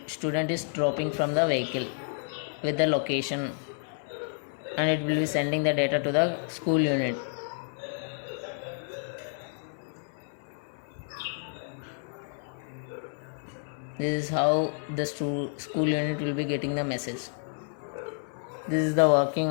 student is dropping from the vehicle with the location, and it will be sending the data to the school unit. This is how the school unit will be getting the message. This is the working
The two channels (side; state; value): right; silent; 55 dB below the other